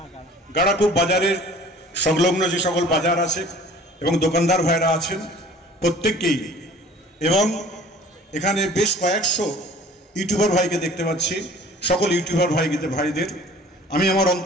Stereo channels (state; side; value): normal; both; correlation 0.48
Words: গাড়াকুপ বাজারের সংলগ্ন যে সকল বাজার আছে এবং দোকানদার ভাইরা আছেন প্রত্যেককেই, এবং এখানে বেশ কয়েকশো ইউটিউবার ভাইকে দেখতে পাচ্ছি, সকল ইউটিউবার ভাইদের আমি আমার